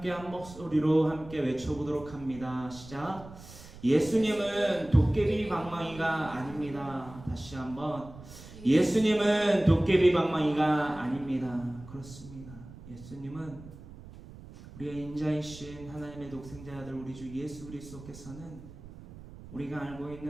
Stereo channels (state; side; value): noise; right; rumble, 17 dB below the sound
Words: 한 목소리로 함께 외쳐보도록 합니다. 시작. 예수님은 도깨비 방망이가 아닙니다. 다시 한번. 예수님은 도깨비 방망이가 아닙니다. 그렇습니다. 예수님은 우리의 인자이신 하나님의 독생자 아들 우리 주 예수 그리스도께서는 우리가 알고